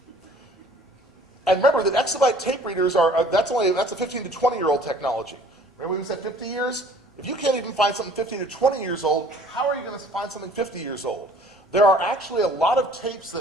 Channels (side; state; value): both; normal; correlation 0.53